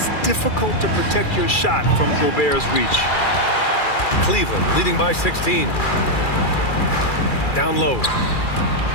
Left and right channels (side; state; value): right; late; 2.4 ms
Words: difficult to protect your shot from Gobert's reach. Cleveland leading by 16. Down low.